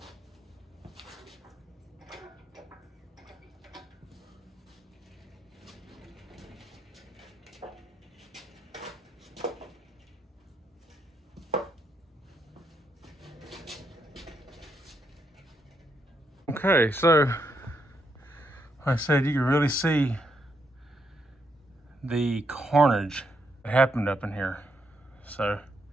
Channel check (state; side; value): normal; both; correlation 0.78